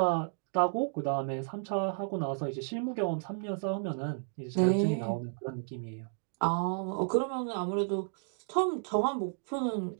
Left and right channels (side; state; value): left; silent; digital silence